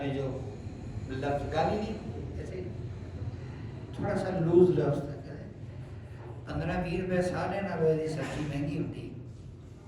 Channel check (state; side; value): identical; both; correlation 1.00